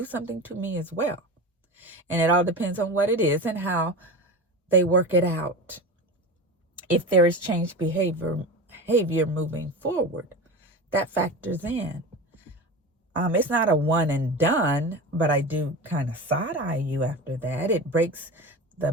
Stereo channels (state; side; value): normal; both; correlation 0.28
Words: something to me as well. And it all depends on what it is and how they work it out. If there is changed behavior moving forward, that factors in. It's not a one and done, but I do kind of side eye you after that. It breaks the